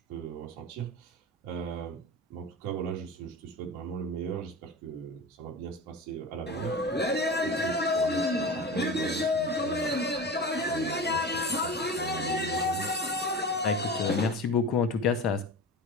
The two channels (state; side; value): normal; both; correlation 0.30